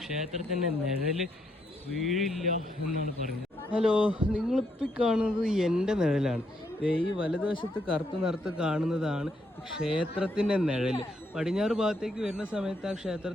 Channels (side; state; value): both; normal; correlation 0.75